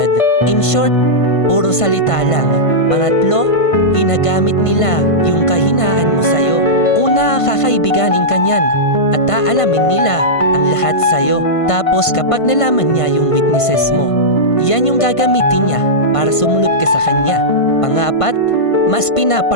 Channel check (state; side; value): late; right; 1.5 ms